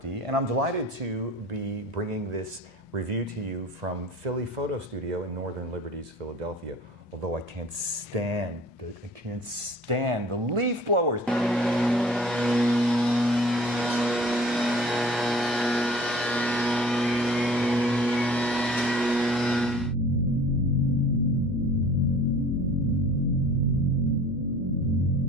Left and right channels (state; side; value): normal; both; correlation 0.47